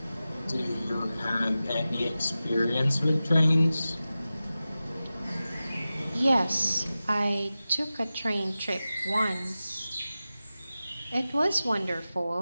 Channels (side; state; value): both; inverted; correlation -0.95